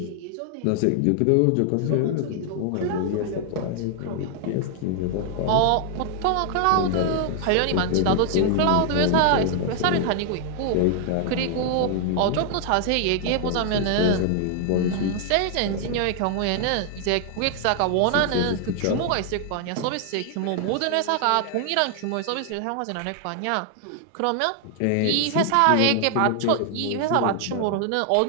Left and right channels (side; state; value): both; different; correlation 0.00